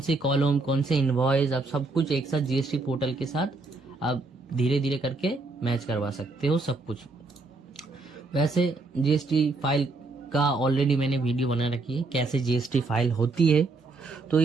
कॉलम, कौन से इनवॉइस, आप सब कुछ एक साथ जीएसटी पोर्टल के साथ आप धीरे धीरे करके मैच करवा सकते हो सब कुछ। वैसे जीएसटी फाइल का ऑलरेडी मैंने वीडियो बना रखी है, कैसे जीएसटी फाइल होती है। तो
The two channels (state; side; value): quieter; left; 3.5 dB